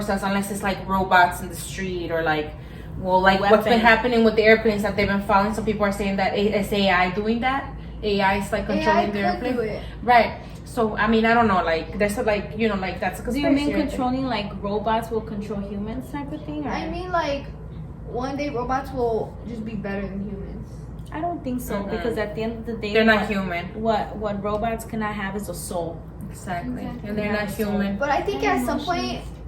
us unless it's like robots in the street or like, well, like what's been happening with the airplanes that they've been following. Some people are saying that it's AI doing that. AI is like controlling the airplane. do it. Right. So I mean, I don't know. Like there's a, like, you know, like that's a Do conspiracy. you mean right there. controlling like robots will control humans type of thing? Or? I mean, like, one day robots will just be better than humans. I don't think so because at the end of the day, They're not human. What robots cannot have is a soul. Exactly. Exactly. And they're Yeah, not so- human. But I think And at some point emotions.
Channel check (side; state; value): both; identical; correlation 1.00